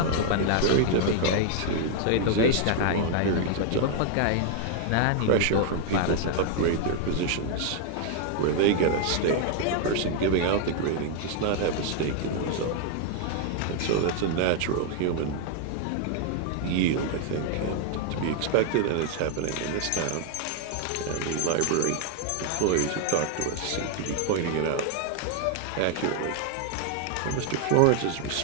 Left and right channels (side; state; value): both; different; correlation 0.00